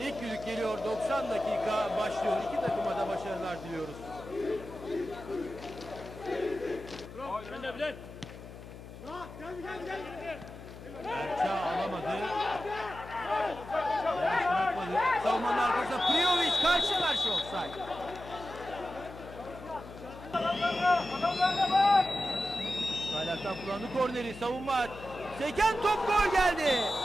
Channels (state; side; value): noise; left; hum, 14 dB below the sound